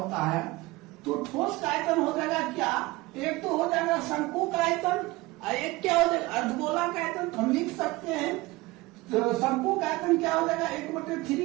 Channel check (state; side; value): quieter; left; 21.1 dB